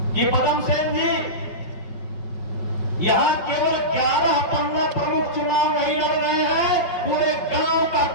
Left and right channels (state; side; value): late; right; 5.3 ms